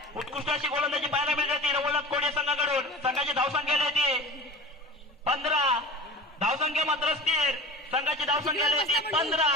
उत्कृष्ट अशी गोलंदाजी पाहायला मिळते रवळनाथ कोडे संघाकडून. संघाची धावसंख्या येते 15. धावसंख्या मात्र स्थिर. संघाची धावसंख्या येते 15.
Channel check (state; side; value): normal; both; correlation 0.36